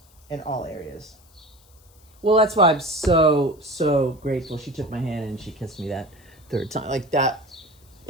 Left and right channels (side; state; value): left; noise; hiss, 29 dB below the sound